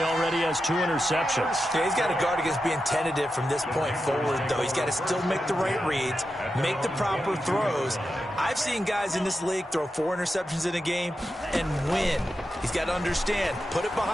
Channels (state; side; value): normal; both; correlation 0.89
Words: already has 2 interceptions. Yeah, he's got to guard against being tentative from this point forward, though. He's got to still make the right reads, make the proper throws. I've seen guys in this league throw 4 interceptions in a game and win. He's got to understand, put it